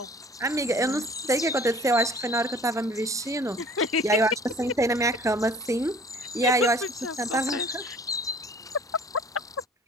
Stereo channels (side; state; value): both; normal; correlation 0.50